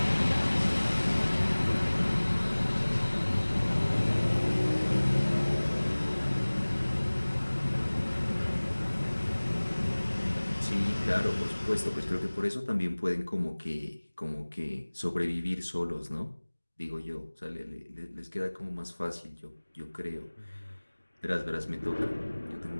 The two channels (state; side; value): inverted; both; correlation -1.00